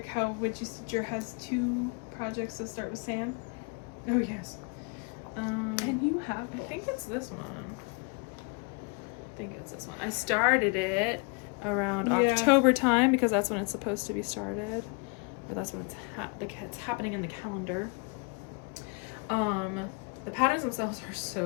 how Witchy Stitcher has 2 projects that start with Sam. Oh, yes. And you have I think it's this one. I started it around October time because that's when it's supposed to be started. Or that's when it's happening in the calendar. The patterns themselves are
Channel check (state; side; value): quieter; right; 32.9 dB